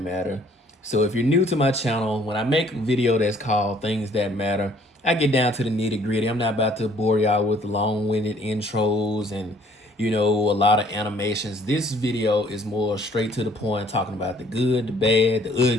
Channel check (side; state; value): both; normal; correlation 0.59